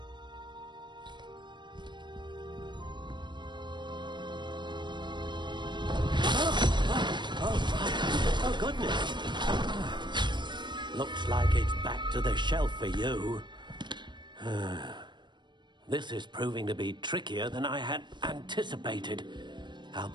Oh, goodness. Looks like it's back to the shelf for you. This is proving to be trickier than I had anticipated. How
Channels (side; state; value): left; late; 0.22 ms